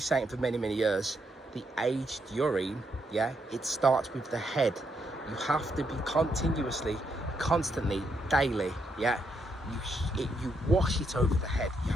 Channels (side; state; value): both; normal; correlation 0.78